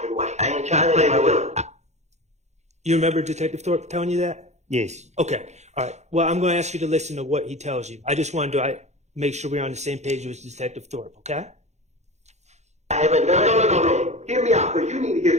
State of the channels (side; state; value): left; late; 0.33 ms